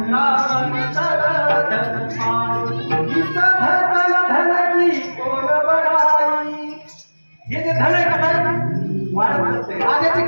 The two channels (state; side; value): inverted; both; correlation -1.00